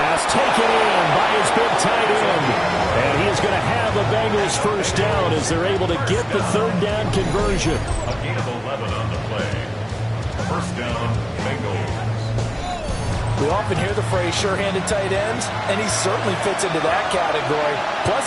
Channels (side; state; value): both; identical; correlation 1.00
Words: taken in by his big tight end. And he is going to have the Bengals first down as they're able to get the 3rd down conversion. A gain of 11 on the play. First down, Bengals. We often hear the phrase sure-handed tight ends, and he certainly fits into that category. Plus,